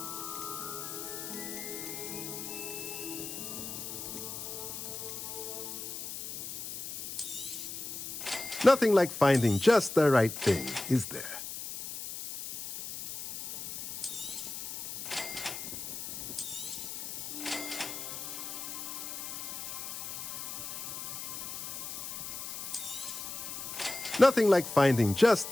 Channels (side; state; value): left; noise; hiss, 7 dB below the sound